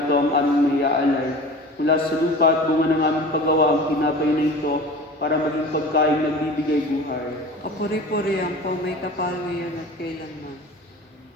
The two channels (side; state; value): both; normal; correlation 0.38